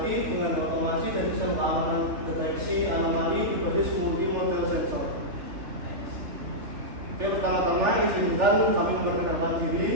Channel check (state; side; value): late; left; 3.3 ms